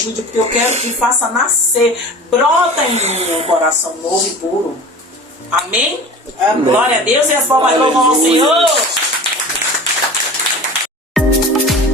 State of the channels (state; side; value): normal; both; correlation 0.38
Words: porque eu quero que faça nascer, brota em mim um coração novo e puro. Amém? Amém. Glória a Deus e as palmas louvam ao Senhor.